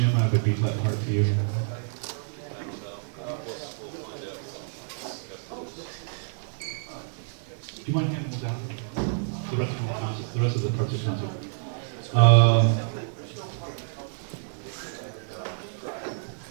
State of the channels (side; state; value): left; silent; digital silence